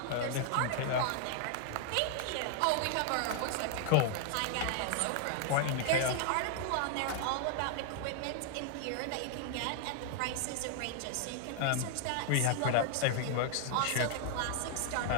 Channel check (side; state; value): both; different; correlation 0.00